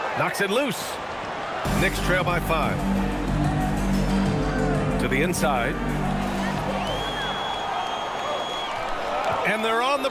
knocks it loose. Knicks trail by 5. To the inside. And they're on the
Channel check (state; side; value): identical; both; correlation 1.00